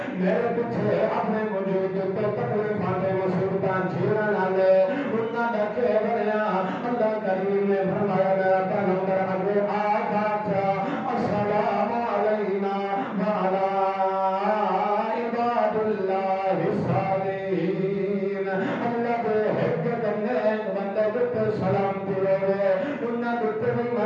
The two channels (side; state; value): both; identical; correlation 1.00